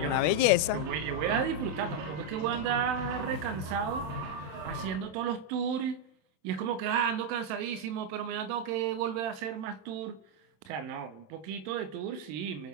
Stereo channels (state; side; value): late; left; 26 ms